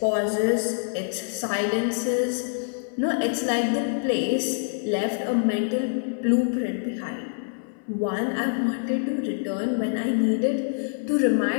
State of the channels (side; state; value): right; silent; 61 dB below the other